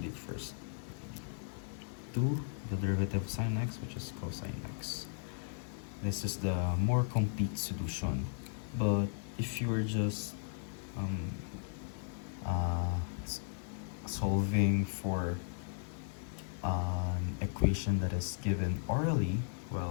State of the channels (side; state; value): right; silent; digital silence